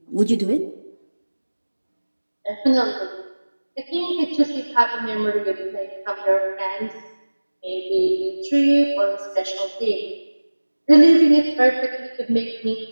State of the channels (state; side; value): inverted; both; correlation -1.00